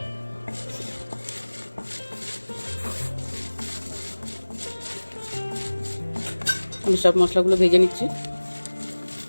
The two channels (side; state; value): both; inverted; correlation -1.00